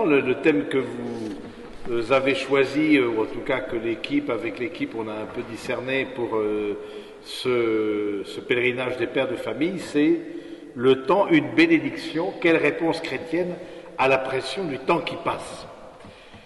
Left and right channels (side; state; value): both; identical; correlation 1.00